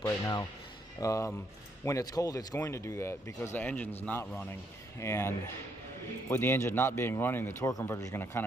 right now. When it's cold, it's going to do that because the engine's not running, and with the engine not being running, the torque converter is going to kind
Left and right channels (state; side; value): normal; both; correlation 0.73